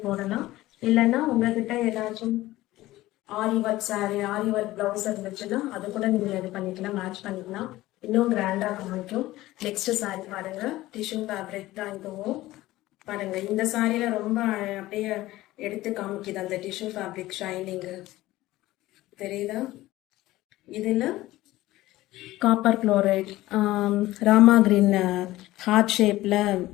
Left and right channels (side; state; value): right; quieter; 16.9 dB